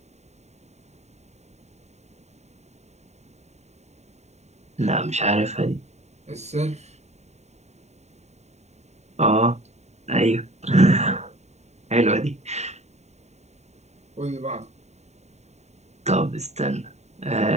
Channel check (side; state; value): left; late; 0.32 ms